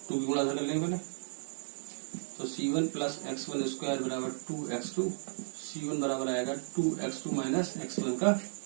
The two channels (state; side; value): silent; left; digital silence